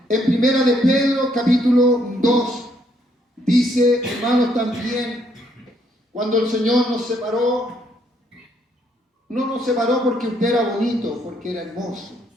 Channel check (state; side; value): normal; both; correlation 0.70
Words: en Primera de Pedro, capítulo 2, dice, hermanos, también, cuando el Señor nos separó, no nos separó porque usted era bonito, porque era hermoso.